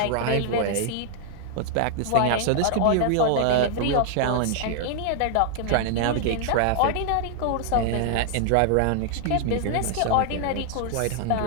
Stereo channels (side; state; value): both; different; correlation 0.00